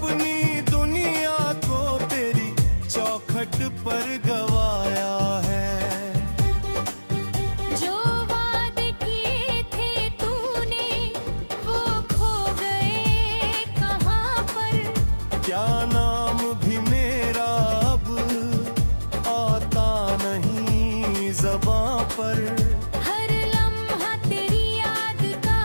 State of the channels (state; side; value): inverted; both; correlation -1.00